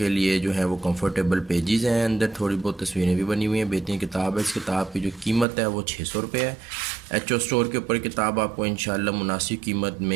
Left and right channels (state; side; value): drops out; left; at 5.5 s